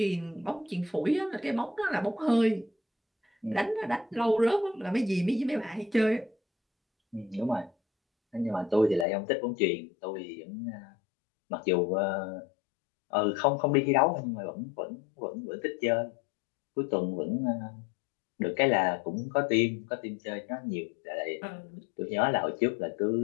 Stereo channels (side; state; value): right; drops out; at 9.1 s